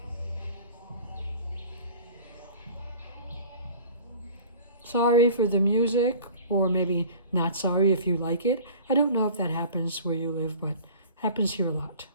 Sorry for the music. or maybe not sorry if you like it. I don't know if that happens where you live, but happens here a lot.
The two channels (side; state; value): both; inverted; correlation -0.44